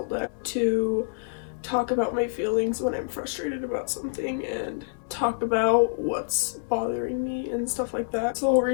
to talk about my feelings when I'm frustrated about something and talk about what's bothering me and stuff like that. That's the whole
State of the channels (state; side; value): silent; right; 58 dB below the other